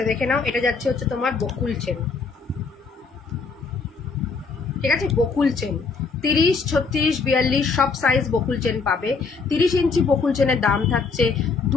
দেখে নাও, এটা যাচ্ছে হচ্ছে তোমার বকুল চেন, ঠিক আছে, বকুল চেন 30, 36, 42 সব সাইজ বকুল চেন পাবে। 30 ইঞ্চি বকুল চেনের দাম থাকছে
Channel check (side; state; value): right; quieter; 4.7 dB